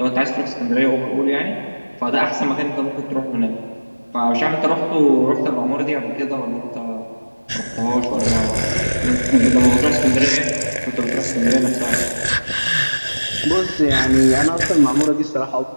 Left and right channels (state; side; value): inverted; both; correlation -1.00